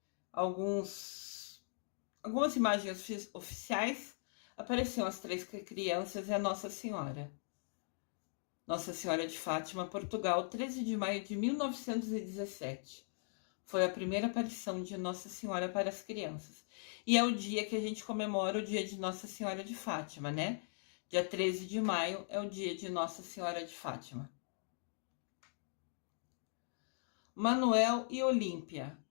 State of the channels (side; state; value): right; silent; digital silence